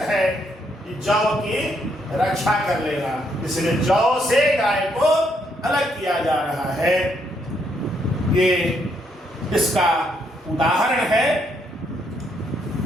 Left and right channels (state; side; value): normal; both; correlation 0.74